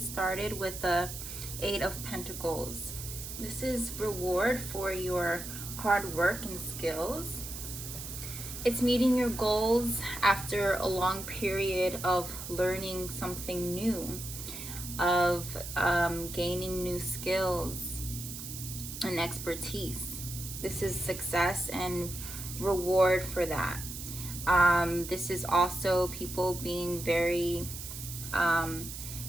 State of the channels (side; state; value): right; noise; hiss, 9 dB below the sound